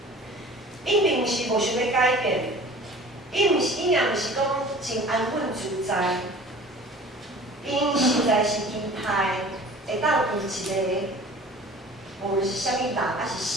伊并毋是无想要改变，伊也毋是讲真安稳自在，因实在是期待会当有一个，无论是啥物人，还是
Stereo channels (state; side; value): normal; both; correlation 0.44